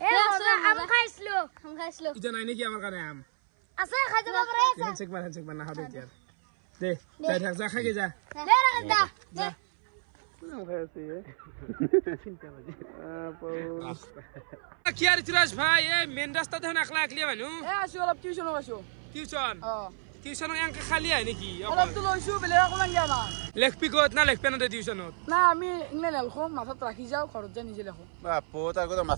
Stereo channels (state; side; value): silent; left; 58 dB below the other